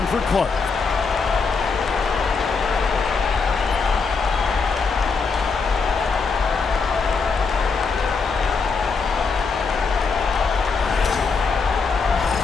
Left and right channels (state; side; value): quieter; right; 4.8 dB